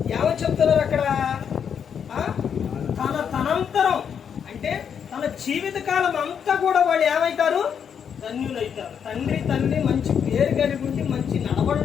ఏమని చెప్తున్నారు అక్కడ? తనంతరం అంటే తన జీవితకాలం అంతా కూడా వాళ్ళు ఏమవుతారు? ధన్యులైతారు. తండ్రి తల్లి మంచి పేరు కలిగి ఉండి మంచి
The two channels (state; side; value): quieter; right; 7.6 dB